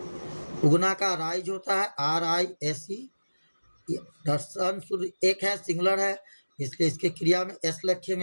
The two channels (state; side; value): inverted; both; correlation -1.00